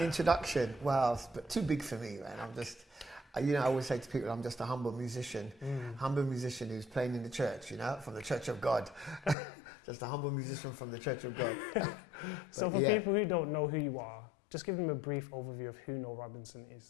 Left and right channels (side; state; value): right; drops out; at 9.3 s